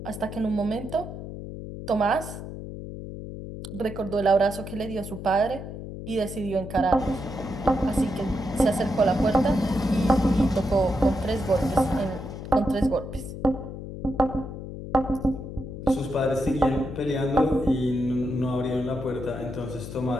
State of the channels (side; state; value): left; noise; hum, 9 dB below the sound